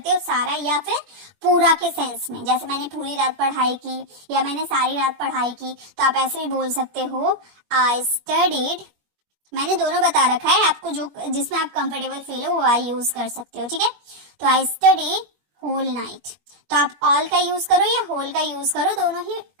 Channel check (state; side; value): late; left; 21 ms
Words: हो, सारा या फिर पूरा के सेंस में, जैसे मैंने पूरी रात पढ़ाई की या मैंने सारी रात पढ़ाई की, तो आप ऐसे भी बोल सकते हो आई स्टडीड। मैंने दोनों बता रखा है, आपको जो जिसमें आप कंफर्टेबल फील हो वो आई यूज कर सकते हो। ठीक है, तो आई स्टडी होल नाइट। तो आप ऑल का यूज करो या होल का यूज करो, दोनों ही